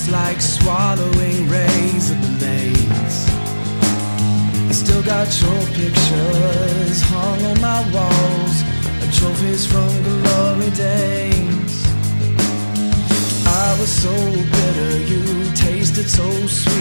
like swallowing razor blades. I still got your pictures hung on my walls, like trophies from glory days. I was so bitter, you tasted so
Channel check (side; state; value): both; inverted; correlation -1.00